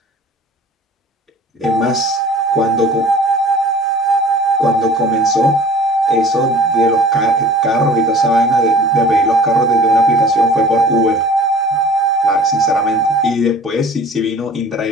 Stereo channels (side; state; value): both; normal; correlation 0.46